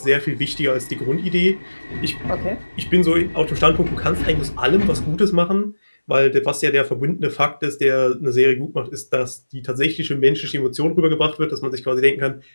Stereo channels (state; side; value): inverted; both; correlation -1.00